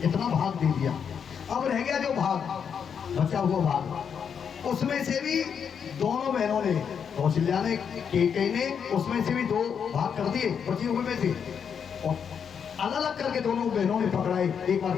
भाग दे दिया। अब रह गया जो भाग, बचा हुआ भाग, उसमें से भी दोनों बहनों ने, कौशल्या ने, केकई ने, उसमें से भी 2 भाग कर दिए बची हुए में से, और अलग अलग करके दोनों बहनों ने पकड़ाए। एक बार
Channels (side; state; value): right; quieter; 7.2 dB